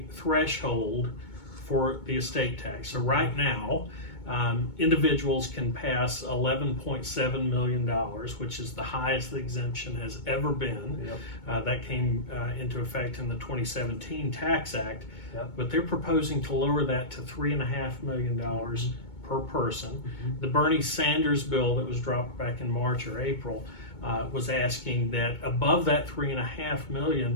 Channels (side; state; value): right; late; 2.2 ms